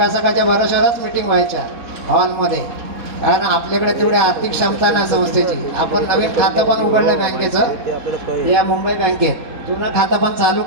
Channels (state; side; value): late; left; 4.1 ms